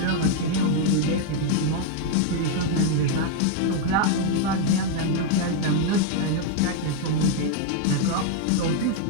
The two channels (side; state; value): both; different; correlation 0.01